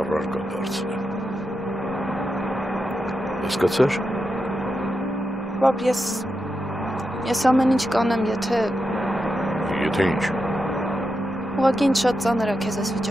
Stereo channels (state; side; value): normal; both; correlation 0.87